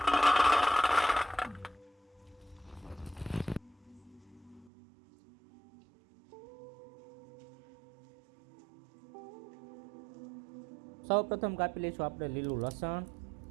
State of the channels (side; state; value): left; drops out; at 4.7 s